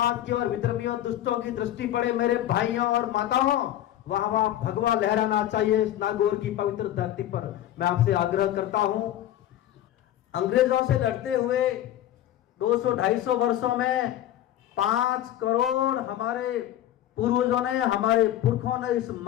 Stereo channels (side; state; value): right; quieter; 12.5 dB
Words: की और विद्रोहियों दुष्टों की दृष्टि पड़े, मेरे भाइयों और माताओं, वहां वहां भगवा लहराना चाहिए इस नागौर की पवित्र धरती पर। मैं आपसे आग्रह करता हूं, अंग्रेजों से लड़ते हुए 200-250 वर्षों में 5 करोड़ हमारे पूर्वजों ने, हमारे पुरखों ने इस